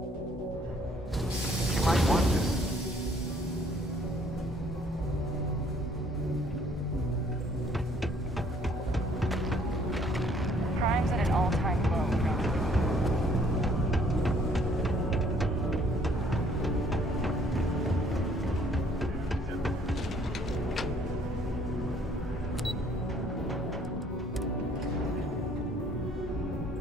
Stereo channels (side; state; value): both; normal; correlation 0.62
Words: You might want this. Crime's at an all-time low.